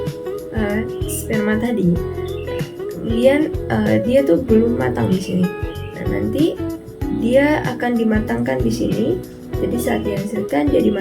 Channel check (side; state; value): both; identical; correlation 1.00